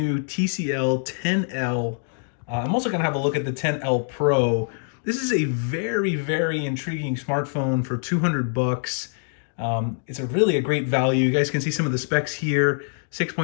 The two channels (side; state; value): right; silent; digital silence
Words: TCL 10L. I'm also going to have a look at the 10L Pro. This is a very intriguing smartphone for 200 bucks. It's really a great value. You guys can see some of the specs here.